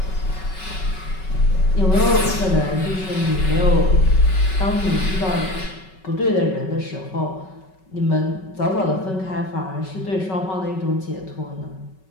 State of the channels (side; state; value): right; late; 5.3 ms